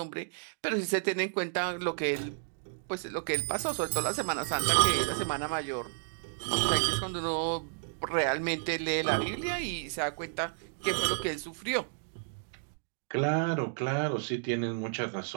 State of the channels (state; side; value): silent; left; digital silence